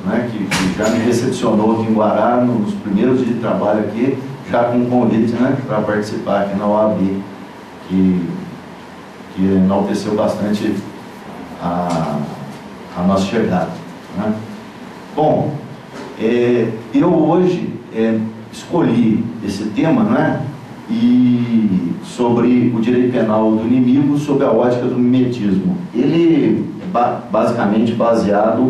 né, que já me recepcionou aqui em Guará nos primeiros dias de trabalho aqui, já com um convite, né, para participar aqui na OAB, que enalteceu bastante a nossa chegada, né? Bom, eu hoje escolhi esse tema, né, e sobre o direito penal do inimigo sob a ótica do mimetismo. Ele é basicamente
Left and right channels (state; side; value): identical; both; correlation 1.00